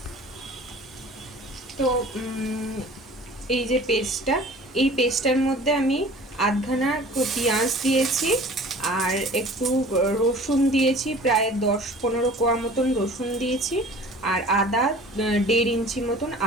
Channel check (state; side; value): normal; both; correlation 0.45